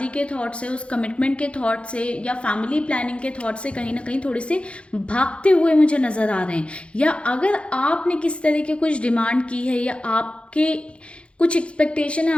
के थॉट से, उस कमिटमेंट के थॉट से या फैमिली प्लानिंग के थॉट से कहीं ना कहीं थोड़े से भागते हुए मुझे नज़र आ रहे हैं। या अगर आपने किस तरह के कुछ डिमांड की है या आपके कुछ एक्सपेक्टेशन है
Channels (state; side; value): late; right; 0.059 ms